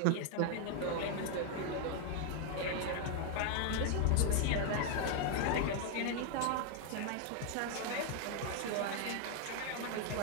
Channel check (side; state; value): both; different; correlation 0.01